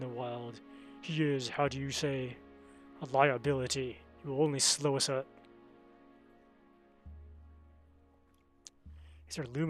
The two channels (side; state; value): both; identical; correlation 1.00